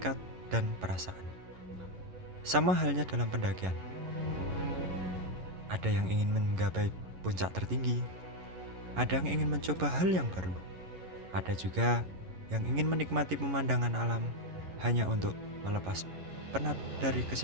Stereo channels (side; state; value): left; late; 11 ms